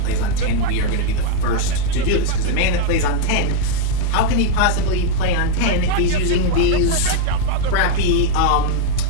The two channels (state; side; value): different; both; correlation 0.00